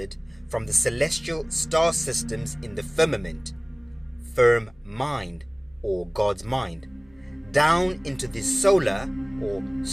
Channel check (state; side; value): noise; right; hum, 29 dB below the sound